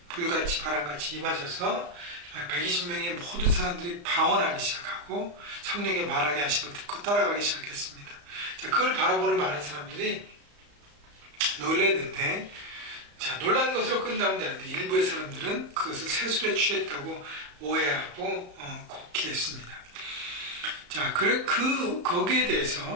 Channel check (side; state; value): left; late; 34 ms